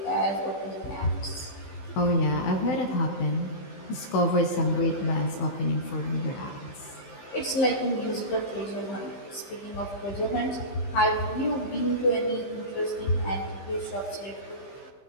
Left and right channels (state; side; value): late; right; 15 ms